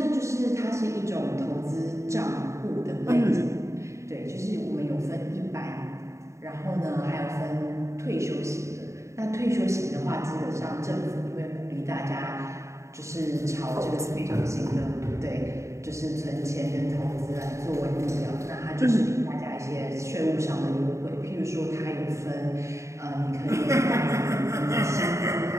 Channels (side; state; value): left; late; 0.14 ms